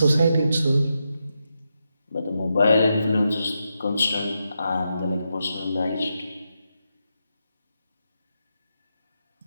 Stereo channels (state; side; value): inverted; both; correlation -0.85